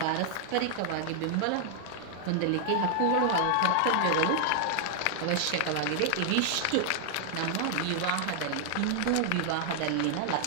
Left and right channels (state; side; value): different; both; correlation -0.01